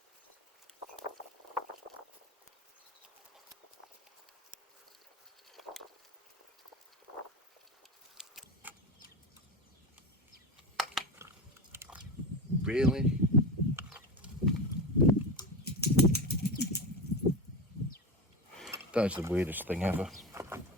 Really? That is the weirdest thing ever.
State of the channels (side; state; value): both; normal; correlation 0.23